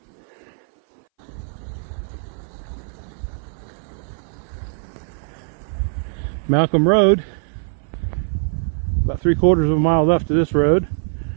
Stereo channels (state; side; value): silent; left; 60 dB below the other